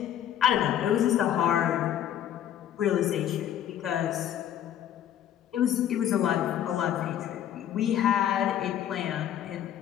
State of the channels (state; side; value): quieter; right; 10.7 dB